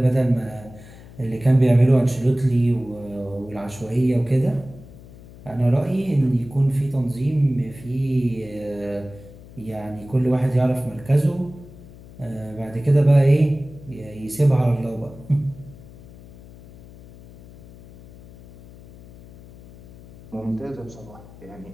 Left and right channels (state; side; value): noise; left; hum, 19 dB below the sound